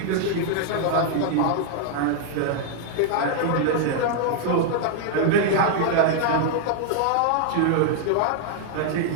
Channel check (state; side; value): different; both; correlation -0.01